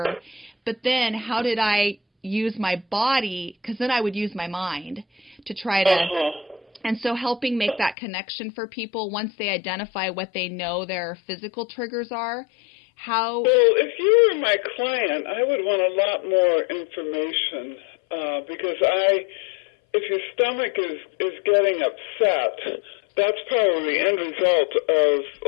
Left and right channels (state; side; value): drops out; right; at 8.0 s